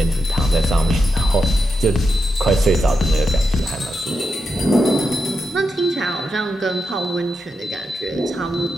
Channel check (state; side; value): normal; both; correlation 0.86